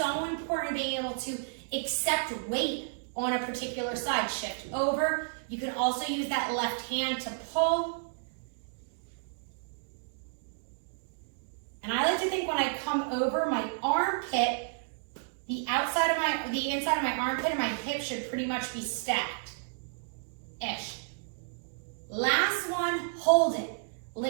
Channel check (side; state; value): left; silent; digital silence